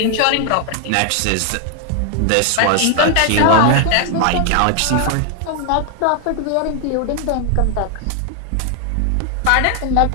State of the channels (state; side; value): different; both; correlation 0.00